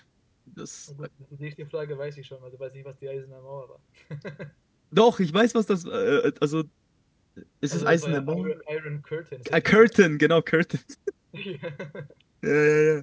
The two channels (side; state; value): both; identical; correlation 1.00